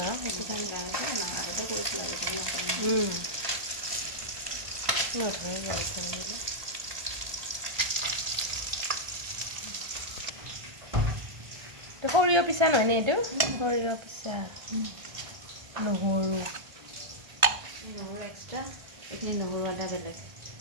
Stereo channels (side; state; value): left; late; 1.4 ms